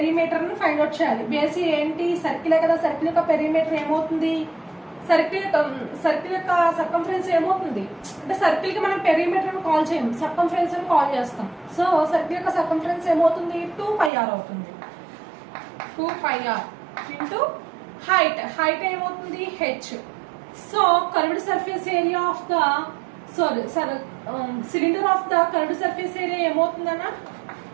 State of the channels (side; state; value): left; drops out; at 14.1 s